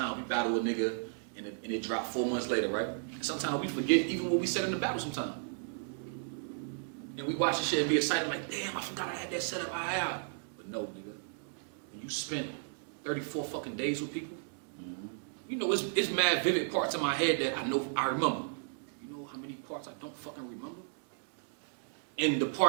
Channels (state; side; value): silent; left; digital silence